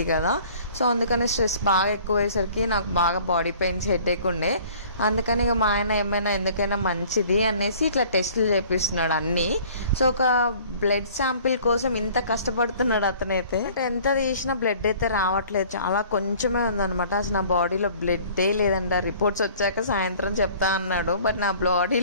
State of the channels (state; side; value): inverted; both; correlation -0.51